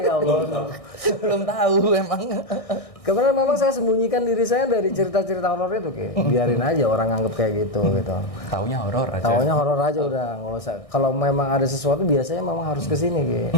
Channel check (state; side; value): late; right; 1.6 ms